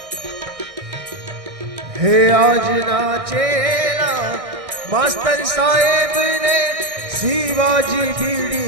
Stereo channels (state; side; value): late; left; 1.6 ms